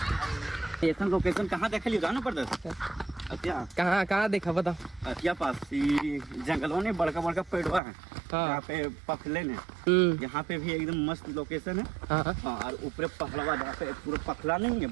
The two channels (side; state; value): left; drops out; at 7.8 s